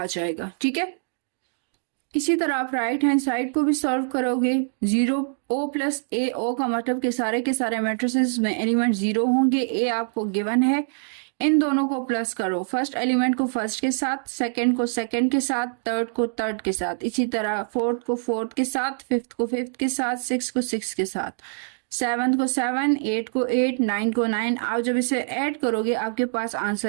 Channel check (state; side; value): silent; left; digital silence